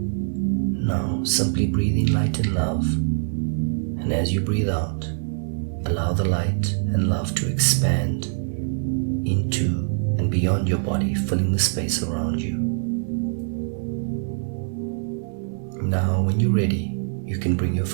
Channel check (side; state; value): left; silent; digital silence